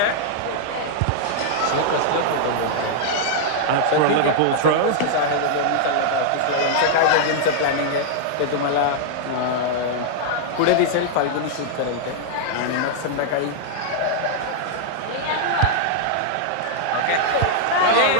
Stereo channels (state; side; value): different; both; correlation -0.01